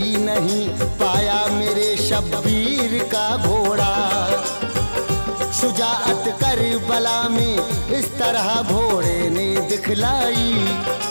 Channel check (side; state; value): both; inverted; correlation -1.00